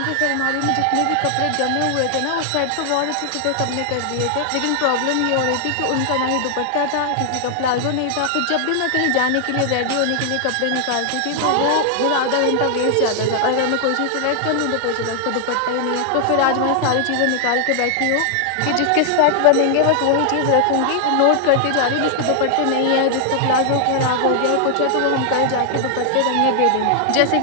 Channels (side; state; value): both; different; correlation 0.00